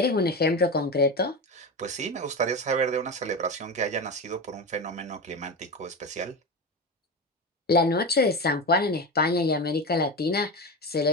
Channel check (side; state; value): both; normal; correlation 0.21